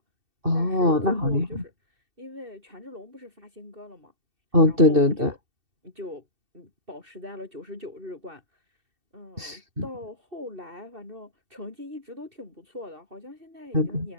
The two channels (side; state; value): left; late; 2.7 ms